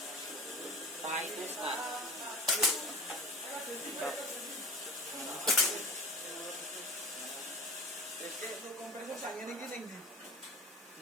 kompresor sang ini gini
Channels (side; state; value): both; normal; correlation 0.36